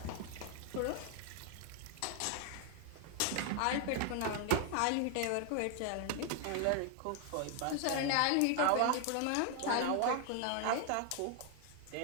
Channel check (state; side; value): different; both; correlation 0.00